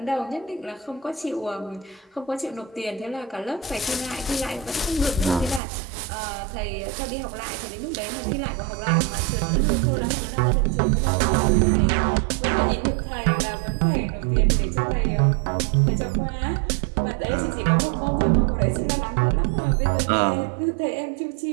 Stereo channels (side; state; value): left; drops out; at 5.6 s